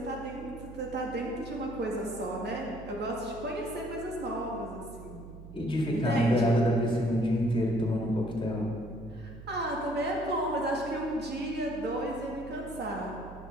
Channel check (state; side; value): noise; right; hum, 14 dB below the sound